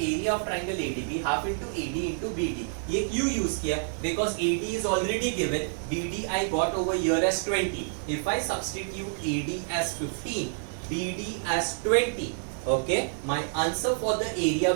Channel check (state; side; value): silent; left; digital silence